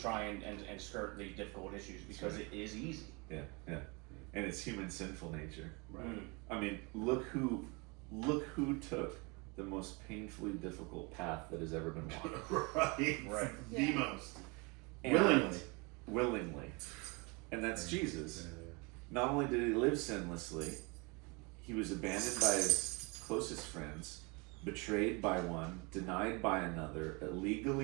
and skirt the difficult issues because it is easy. Yeah. Yeah. And it's human sinful nature. Right. I mean, look who took the most painfully difficult path that has ever been walked. Right. Right. The Yeah. most. And willingly. And that's Jesus. Not only did he live sinlessly, he was abandoned by his closest friends, betrayed by one, denied by another,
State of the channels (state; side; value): quieter; left; 29.2 dB